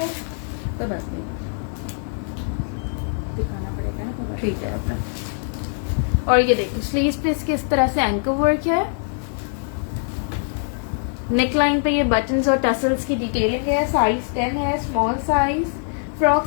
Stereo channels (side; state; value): right; silent; 64 dB below the other